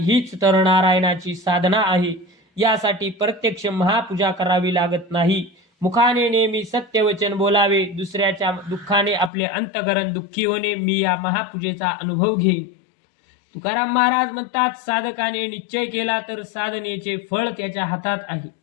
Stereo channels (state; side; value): drops out; right; at 9.3 s